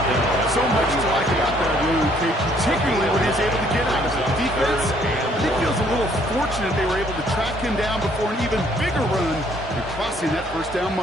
So much to like about that run, Kate, particularly when he was able to get out of it. Defense, I think feels a little fortunate they were able to track him down before an even bigger run and crossing that 1st down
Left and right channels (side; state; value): both; normal; correlation 0.64